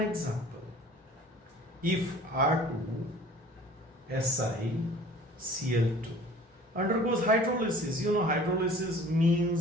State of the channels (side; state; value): both; normal; correlation 0.48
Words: example. If R2SiCl2 undergoes hydrolysis, hydrolysis